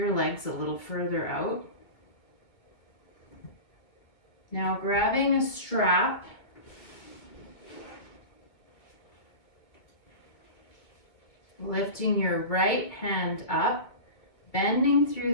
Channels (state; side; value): late; right; 2.2 ms